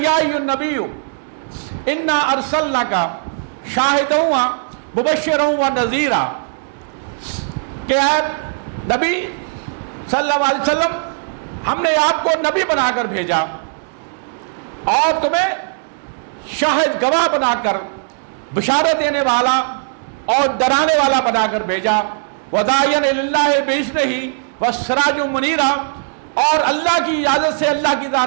ایھا النبی انا ارسلناک شاہدا مبشرا ونذیرا، کہ اے نبی صلی اللہ علیہ وسلم ہم نے آپ کو نبی بنا کر بھیجا اور تمہیں شاہد گواہ بنا کر بشارت دینے والا اور ڈرانے والا بنا کر بھیجا، وَدَاعِيًا إِلَى اللَّهِ بِإِذْنِهِ وَسِرَاجًا مُنِيرًا، اور اللہ کی اجازت سے اللہ کی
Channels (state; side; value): silent; left; digital silence